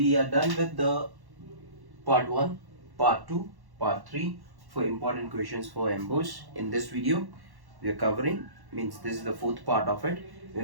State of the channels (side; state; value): left; late; 1.1 ms